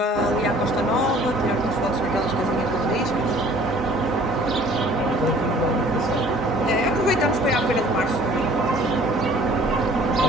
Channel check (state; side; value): normal; both; correlation 0.53